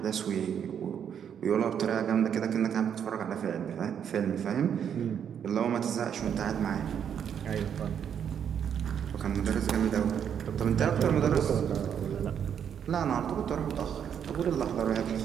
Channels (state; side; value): quieter; left; 8.4 dB